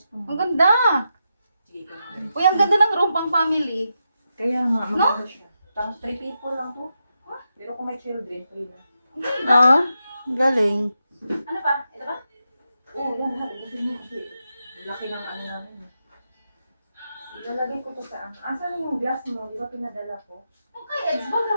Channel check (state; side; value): inverted; both; correlation -0.86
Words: mo. Ang ganda. Sige ka na. Uy, ang ganda ng room pang family. Kaya nga, maganda siya. Tapos 3 people lang to. Pero kung may children, free na. Oo. Galing. Ano ba? Ito ba? Oo, yan lahat. Kasi mo kasi laki ng ano namin. Ilalagay ko to sa ano. Asan yung glass mo? Di ba pinadala ko? Okay, Eds,